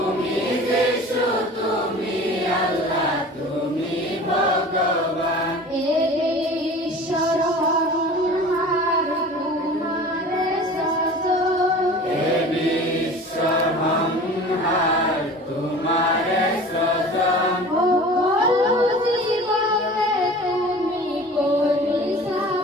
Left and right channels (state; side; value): normal; both; correlation 0.40